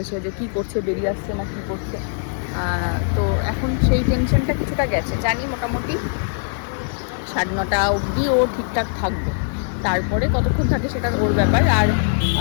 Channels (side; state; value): right; silent; 65 dB below the other